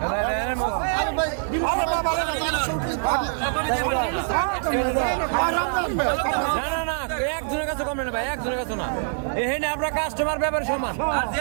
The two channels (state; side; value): silent; left; digital silence